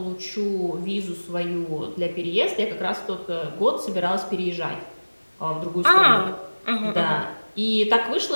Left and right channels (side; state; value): both; inverted; correlation -1.00